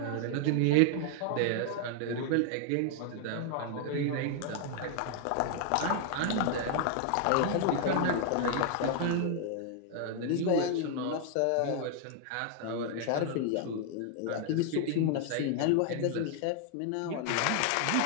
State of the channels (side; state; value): both; different; correlation 0.00